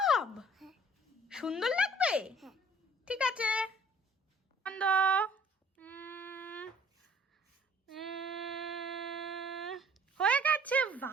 সুন্দর লাগবে? হ্যাঁ। ঠিক আছে, বন্ধ। হয়ে গেছে।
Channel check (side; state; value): both; normal; correlation 0.55